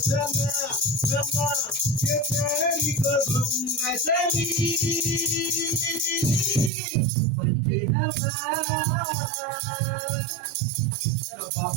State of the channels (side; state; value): left; drops out; at 6.7 s